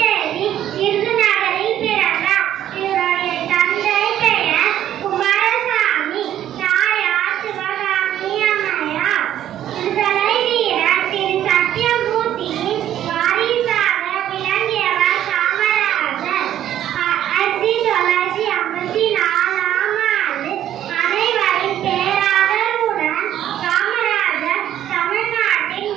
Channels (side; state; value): left; quieter; 11.5 dB